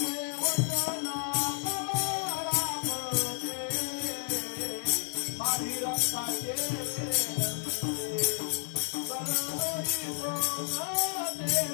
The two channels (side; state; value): right; silent; digital silence